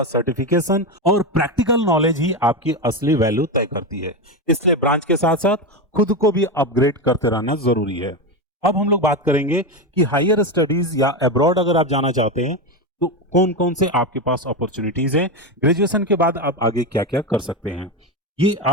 सर्टिफिकेशन और प्रैक्टिकल नॉलेज ही आपकी असली वैल्यू तय करती है। इसलिए ब्रांच के साथ साथ खुद को भी अपग्रेड करते रहना जरूरी है। अब हम लोग बात करेंगे कि हायर स्टडीज या अब्रॉड अगर आप जाना चाहते हैं तो कौन कौन से आपके पास अपॉर्चुनिटीज हैं, ग्रेजुएशन के बाद आप आगे क्या क्या कर सकते हैं। ये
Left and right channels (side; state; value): both; normal; correlation 0.14